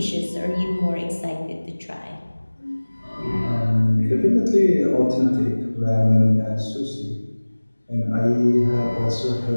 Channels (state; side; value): inverted; both; correlation -1.00